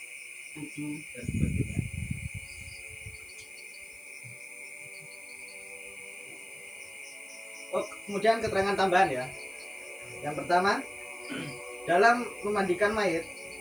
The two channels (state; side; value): noise; left; hiss, 23 dB below the sound